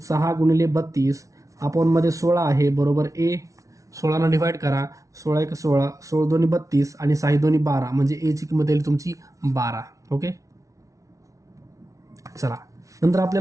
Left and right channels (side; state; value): left; late; 0.16 ms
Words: गुणिले 32 अपॉनमध्ये 16 आहे बरोबर ए. 16नं डिवाईड करा, 16 1 16, 16 2 32 आणि 6 2 12, म्हणजे एची किंमत येईल तुमची 12. ओके, चला, नंतर